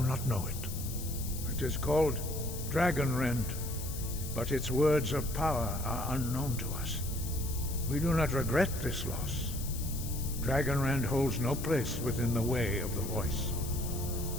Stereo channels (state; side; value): noise; left; hiss, 10 dB below the sound